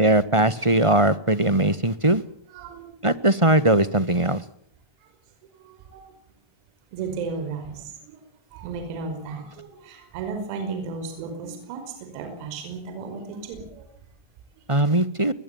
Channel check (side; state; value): left; late; 1.5 ms